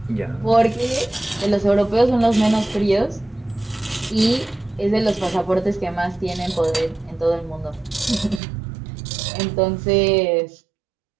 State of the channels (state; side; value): drops out; left; at 8.4 s